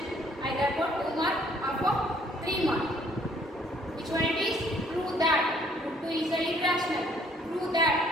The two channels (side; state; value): both; normal; correlation 0.62